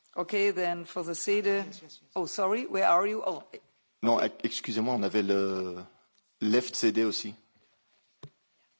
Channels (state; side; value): inverted; both; correlation -1.00